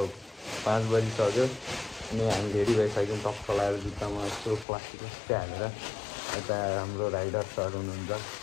5 बजिसक्यो अनि हामी रेडी भइसक्यौँ। टक्क लगाएर जुत्तामा यस्तो प्लास्टिक हालेर। यता हाम्रो राइडर सर हुनुहुन्छ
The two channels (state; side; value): drops out; right; at 4.7 s